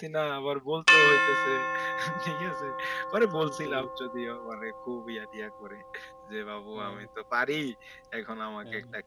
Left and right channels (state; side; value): identical; both; correlation 1.00